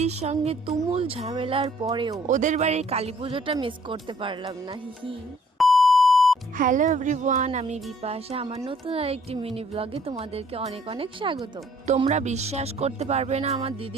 সঙ্গে তুমুল ঝামেলার পরেও ওদের বাড়ির কালী পুজোটা মিস করতে পারলাম না। হিহি। হ্যালো এভরিওয়ান, আমি বিপাশা। আমার নতুন আরেকটি মিনি ব্লগে তোমাদেরকে অনেক অনেক স্বাগত। তোমরা বিশ্বাস করতে পারবে না আমার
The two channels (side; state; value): both; normal; correlation 0.60